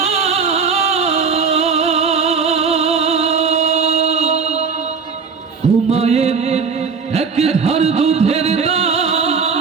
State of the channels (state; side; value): quieter; left; 5.5 dB